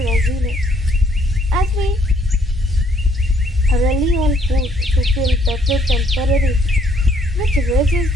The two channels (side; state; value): both; normal; correlation 0.66